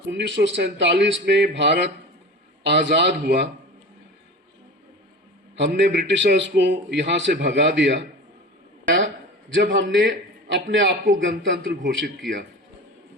1947 में भारत आजाद हुआ। हमने ब्रिटिशर्स को यहां से भगा दिया जब हमने अपने आप को गणतंत्र घोषित किया।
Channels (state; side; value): normal; both; correlation 0.34